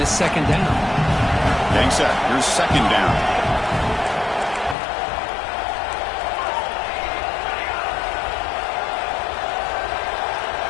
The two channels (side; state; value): right; drops out; at 4.8 s